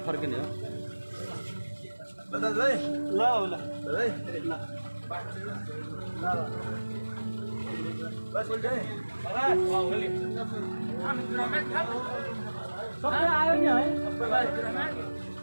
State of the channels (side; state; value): both; inverted; correlation -1.00